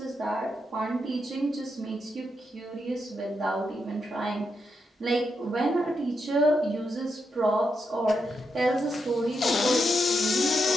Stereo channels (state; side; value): normal; both; correlation 0.83